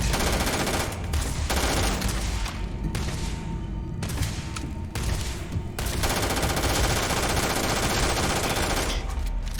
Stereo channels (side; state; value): both; identical; correlation 1.00